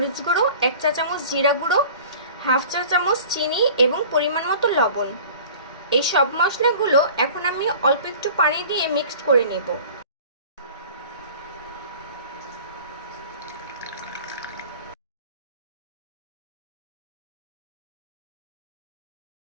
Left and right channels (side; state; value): both; inverted; correlation -0.43